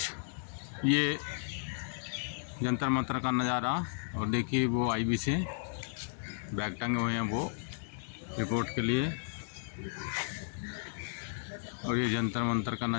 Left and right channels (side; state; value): right; silent; digital silence